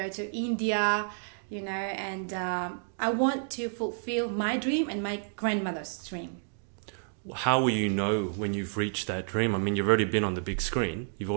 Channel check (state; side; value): silent; left; digital silence